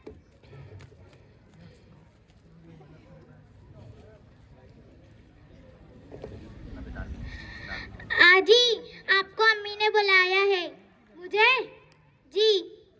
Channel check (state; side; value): identical; both; correlation 1.00